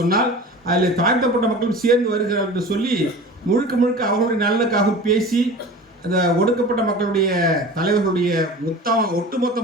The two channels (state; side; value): normal; both; correlation 0.37